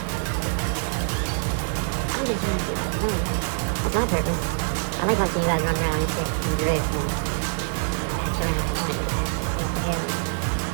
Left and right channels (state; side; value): silent; left; 62 dB below the other